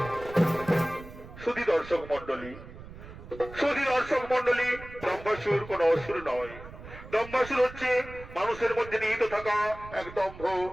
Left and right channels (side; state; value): right; noise; rumble, 15 dB below the sound